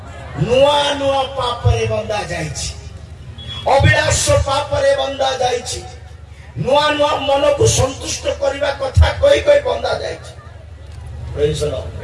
नुआ नुआ पाप रे बंधा जाइछि, अभिलाष पाप रे बंधा जाइछि, नुआ नुआ मन को संतुष्ट करबा कथा कहि कहि बंधा जाइछि। Praise Lord.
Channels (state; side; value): identical; both; correlation 1.00